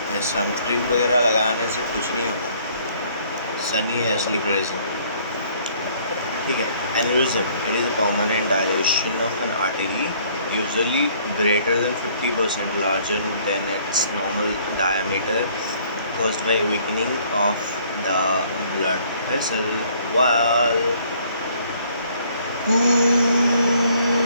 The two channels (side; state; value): both; inverted; correlation -0.61